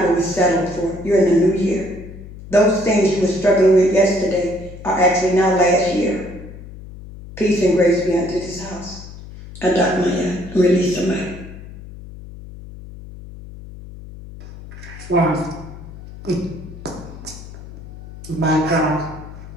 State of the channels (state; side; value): noise; left; hum, 15 dB below the sound